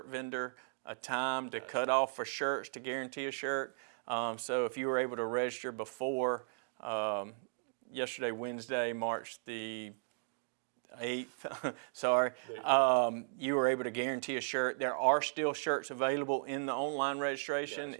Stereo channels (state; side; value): silent; left; digital silence